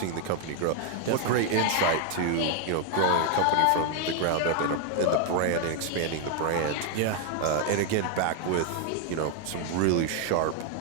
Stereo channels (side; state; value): both; different; correlation 0.00